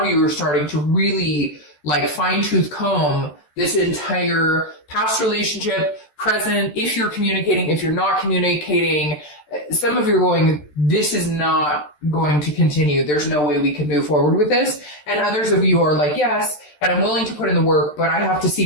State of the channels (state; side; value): late; right; 13 ms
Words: you are starting to really like fine-tooth comb this entire past relationship, present, if you're communicating, if you're not communicating. Some of you are going, this is not going to continue. There's no way we can move forward with this. And others of you are like, yes, and I'm willing to put in the work, but I have to